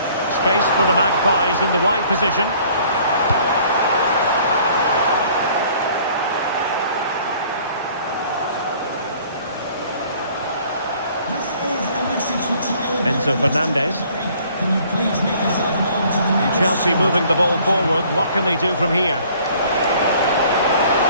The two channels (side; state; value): both; inverted; correlation -0.56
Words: Space for the Magpies in the wide position. Enzo Fernandez. Can you please make yourself known to the And Chelsea moving the ball forward. What can they do from here?